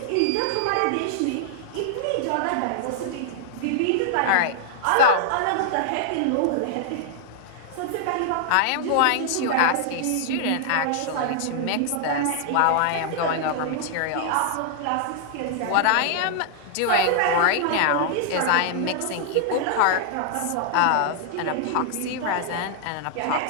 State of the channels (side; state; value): both; different; correlation -0.01